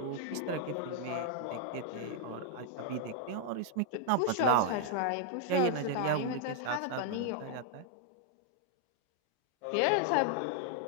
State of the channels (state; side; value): different; both; correlation 0.00